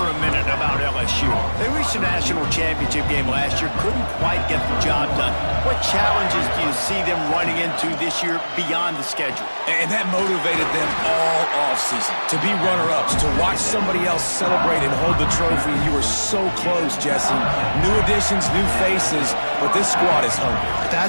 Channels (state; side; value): inverted; both; correlation -1.00